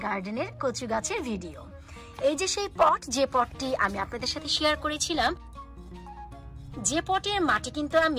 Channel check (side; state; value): both; identical; correlation 1.00